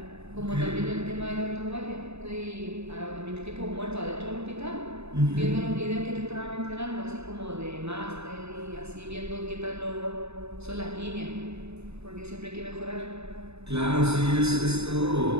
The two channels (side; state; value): left; late; 0.80 ms